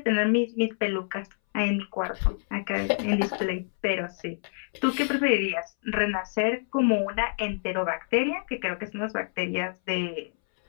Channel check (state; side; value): silent; right; 60 dB below the other